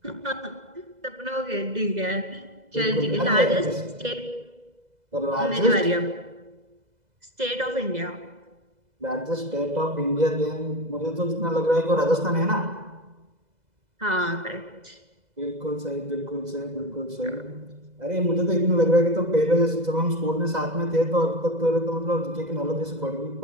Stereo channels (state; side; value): late; left; 2.0 ms